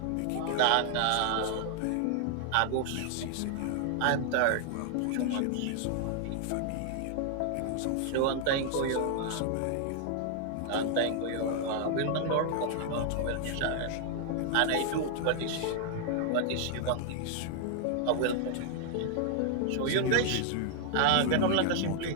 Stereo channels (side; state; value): both; different; correlation 0.00